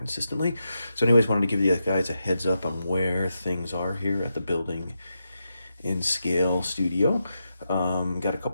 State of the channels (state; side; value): inverted; both; correlation -0.86